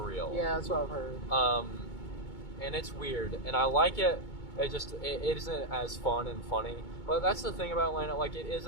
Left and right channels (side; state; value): right; late; 2.2 ms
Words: Yeah, that's what I've heard. And it's weird, and I like it. It isn't as fun and funny. But that's the thing about Atlanta. Like it